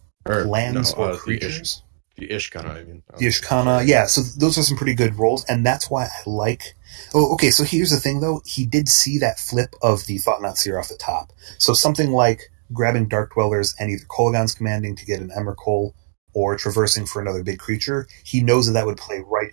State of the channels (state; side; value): silent; left; digital silence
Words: lands or creatures? The Ishkana, I mean. The Ishkana, yeah, so those are some pretty good rolls, and that's why I like... Oh, okay, so here's the thing, though. He did see that flip of the Thought-Knot Seer off the top. So something like grabbing Dark Dwellers and either Kolaghan's Commanding to get an Emrakul or traversing for another big creature, he knows that would play right